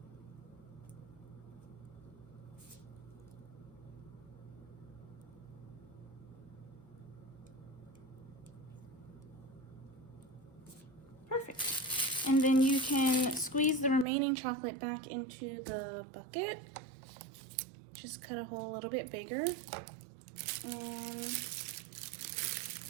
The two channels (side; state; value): left; drops out; at 14.1 s